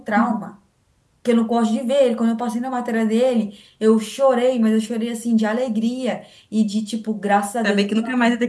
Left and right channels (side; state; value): both; identical; correlation 1.00